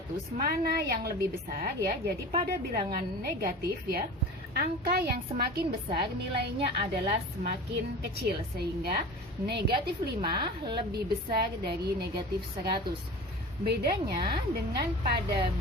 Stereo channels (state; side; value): normal; both; correlation 0.35